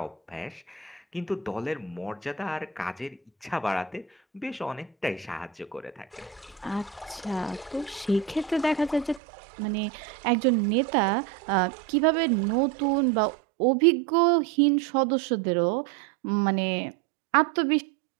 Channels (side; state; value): left; drops out; at 9.2 s